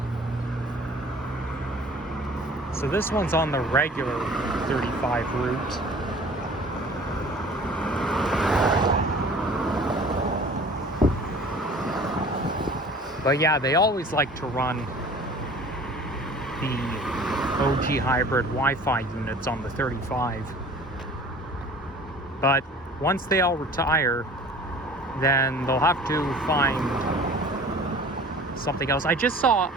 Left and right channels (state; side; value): normal; both; correlation 0.46